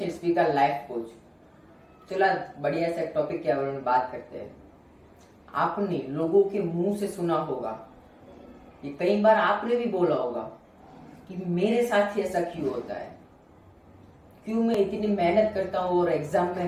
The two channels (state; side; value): identical; both; correlation 1.00